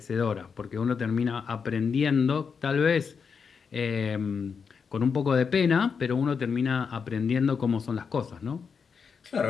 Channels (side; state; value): right; quieter; 6.0 dB